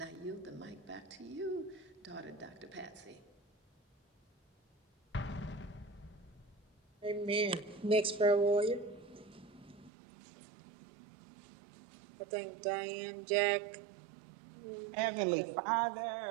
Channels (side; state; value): left; drops out; at 9.9 s